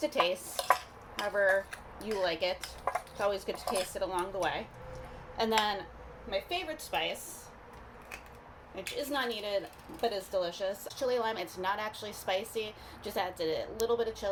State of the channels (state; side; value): identical; both; correlation 1.00